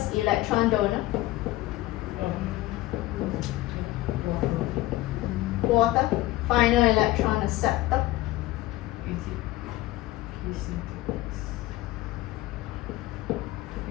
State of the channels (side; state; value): right; quieter; 17.5 dB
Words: electron donor? Water. Final electron acceptor.